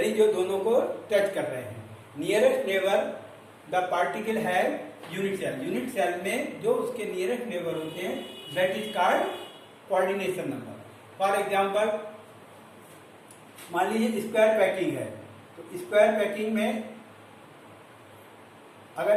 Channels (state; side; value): identical; both; correlation 1.00